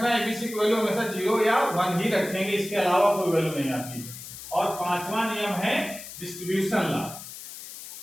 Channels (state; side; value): noise; left; hiss, 13 dB below the sound